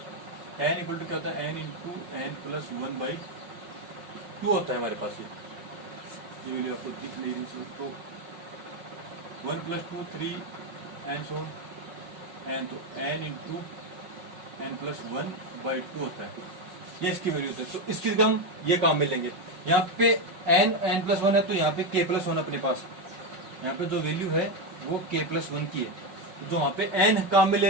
n equal to क्या होता है, एन इंटू एन प्लस 1/2 होता है हमारे पास। ये वैल्यू आपको दिख नहीं रही, तो 1 प्लस 2 3 एन सो एन, तो एन इंटू एन प्लस 1/2 होता है, ये इसकी वैल्यू होती है। तो इसकी जगह हम ये काम में लेंगे, यहाँ पे एन प्लस 1 है, तो यहाँ पे के प्लस 1 अपने पास, यहाँ पे जो वैल्यू है वो के प्लस 1 की है, तो जो वहाँ पे एन काम में ले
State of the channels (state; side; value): late; left; 5.4 ms